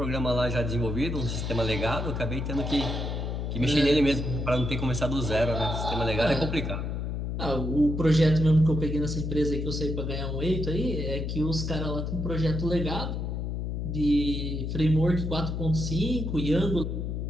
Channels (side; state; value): left; noise; hum, 3 dB below the sound